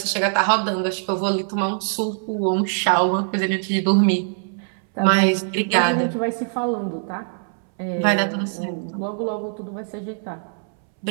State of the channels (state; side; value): silent; left; 64 dB below the other